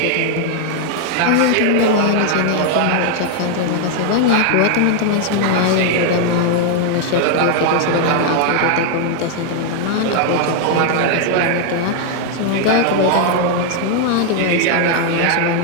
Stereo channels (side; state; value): both; different; correlation 0.00